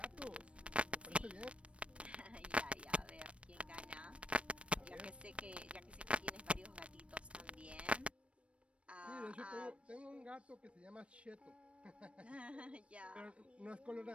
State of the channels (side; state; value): left; late; 0.061 ms